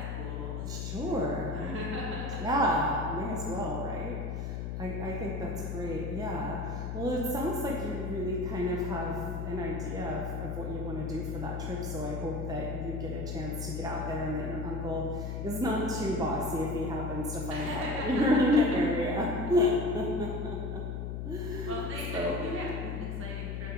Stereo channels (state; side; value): noise; left; hum, 3 dB below the sound